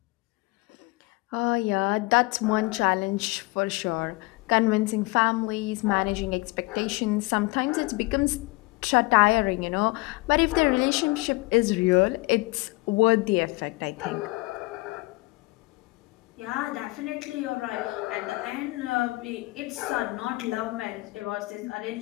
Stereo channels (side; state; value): right; quieter; 23.4 dB